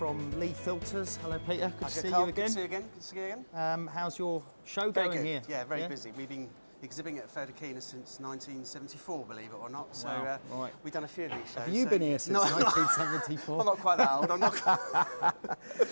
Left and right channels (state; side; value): inverted; both; correlation -1.00